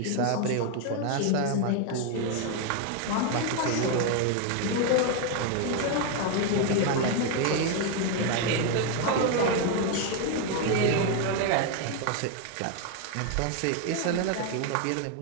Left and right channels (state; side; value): different; both; correlation 0.01